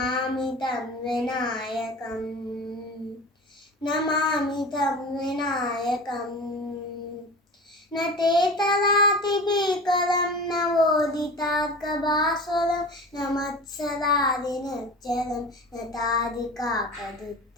तं विनायकम् नमामि तं विनायकम् न ते तदातिभीकरं नवोदितार्कभास्वरं न मत्सरादिनिर्जरं न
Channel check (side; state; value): both; normal; correlation 0.34